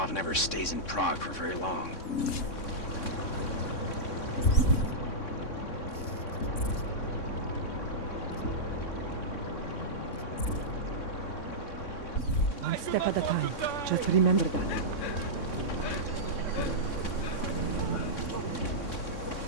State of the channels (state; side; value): late; right; 3.6 ms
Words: never stays in Prague for very long. One step at a time. Just remember that.